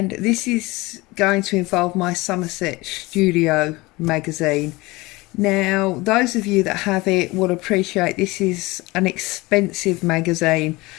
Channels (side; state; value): right; quieter; 22.2 dB